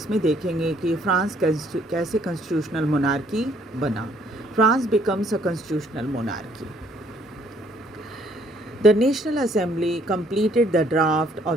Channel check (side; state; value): both; normal; correlation 0.64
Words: देखेंगे कि फ्रांस कैसे कॉन्स्टिट्यूशनल मोनार्की बना। France becomes a constitutional monarchy. The National Assembly completed the draft